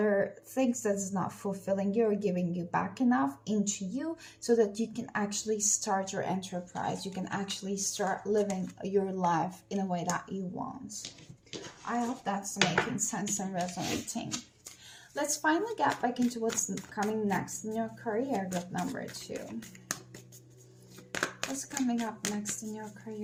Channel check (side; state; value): both; identical; correlation 1.00